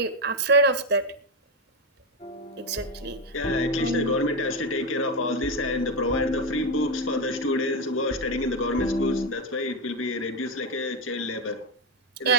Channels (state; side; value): normal; both; correlation 0.10